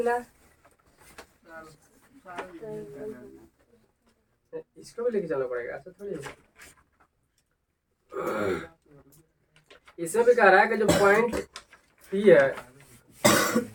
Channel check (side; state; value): both; identical; correlation 1.00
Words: इसको भी लेके चलना पड़ेगा, ऐसा थोड़ी है। इसमें भी कह रहा है कि जो पॉइंट P है